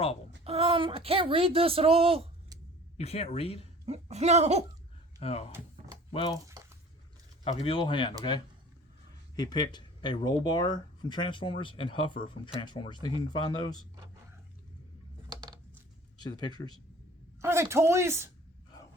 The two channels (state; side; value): normal; both; correlation 0.46